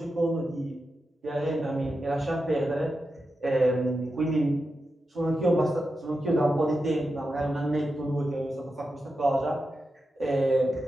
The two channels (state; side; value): normal; both; correlation 0.89